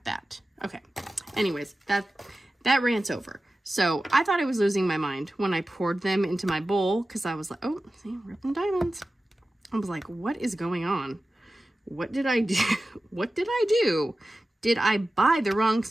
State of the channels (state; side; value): normal; both; correlation 0.95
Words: that. Okay. Anyways, that rant's over. So I thought I was losing my mind when I poured them into my bowl because I was like, oh, see, ripping diamonds. I was like, what is going on? What did I do? What did I do? Did I buy the wrong